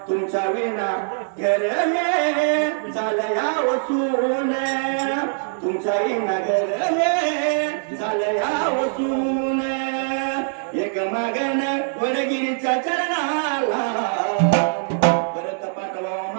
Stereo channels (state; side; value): silent; left; digital silence